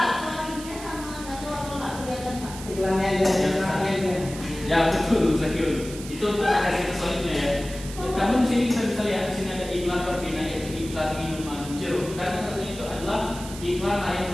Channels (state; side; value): noise; right; hiss, 13 dB below the sound